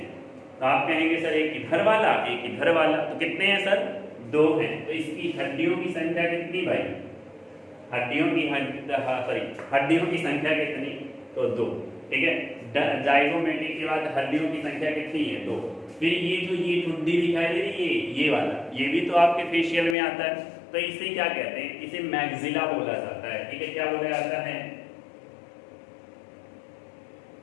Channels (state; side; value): drops out; right; at 20.0 s